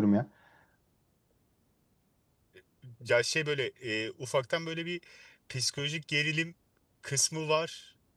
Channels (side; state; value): both; identical; correlation 1.00